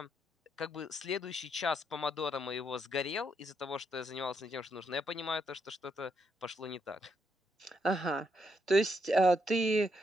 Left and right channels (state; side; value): normal; both; correlation 0.77